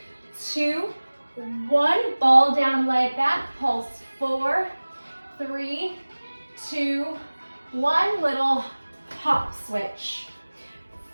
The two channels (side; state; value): both; inverted; correlation -1.00